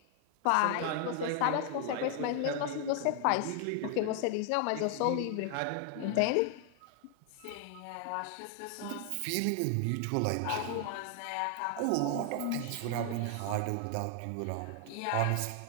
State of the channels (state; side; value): different; both; correlation 0.00